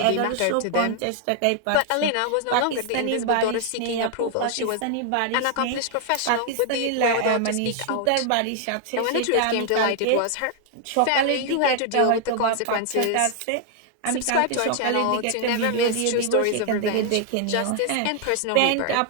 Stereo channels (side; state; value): both; different; correlation 0.00